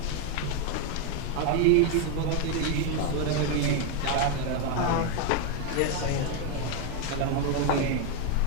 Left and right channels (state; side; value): different; both; correlation 0.01